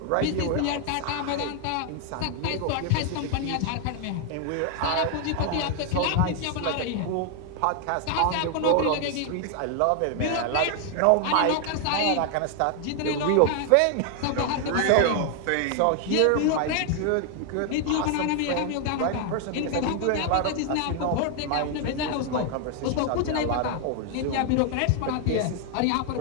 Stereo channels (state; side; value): different; both; correlation 0.00